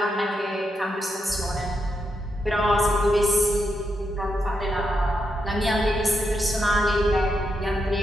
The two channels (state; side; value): normal; both; correlation 0.83